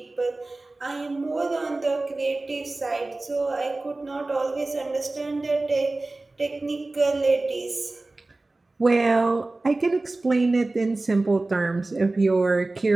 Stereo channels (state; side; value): quieter; left; 3.1 dB